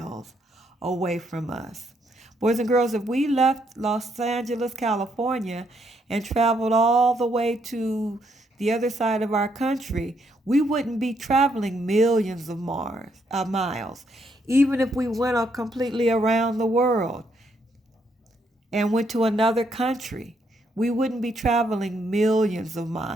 away from us. Boys and girls, if we left Los Angeles, California, and traveled all the way to the other side of our country, we wouldn't be traveling millions of miles. Even if we went completely around the world and went to another country, we wouldn't be traveling millions of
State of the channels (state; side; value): normal; both; correlation 0.74